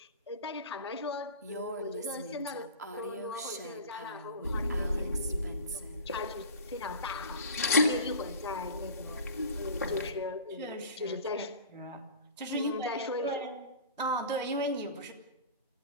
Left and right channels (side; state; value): both; inverted; correlation -0.37